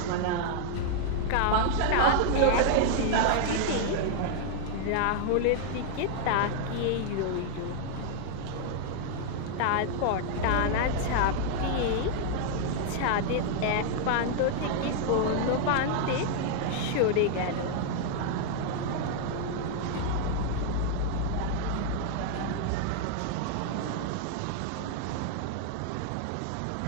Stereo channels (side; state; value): both; different; correlation 0.00